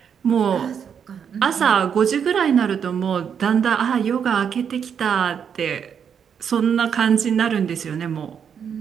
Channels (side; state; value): left; quieter; 7.6 dB